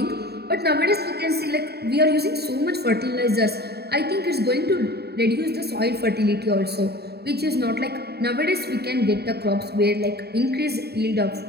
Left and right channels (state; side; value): late; left; 0.47 ms